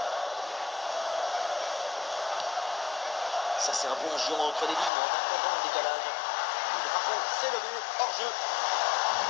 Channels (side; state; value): right; drops out; at 4.9 s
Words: Ça, c'est un bon géant entre les lignes, en attendant le décalage. Le drapeau s'est levé, hors jeu.